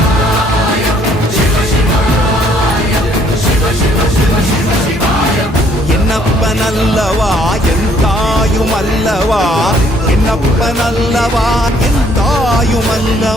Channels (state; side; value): normal; both; correlation 0.64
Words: என்னப்பனல்லவா என் தாயும் அல்லவா என்னப்பனல்லவா என் தாயும்